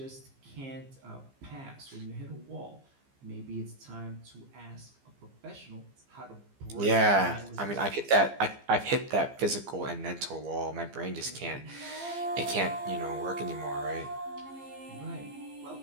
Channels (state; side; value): late; left; 15 ms